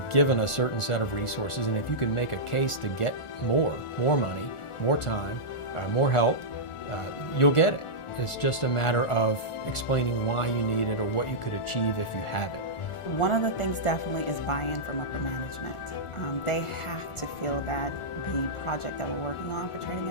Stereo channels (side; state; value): right; late; 1.4 ms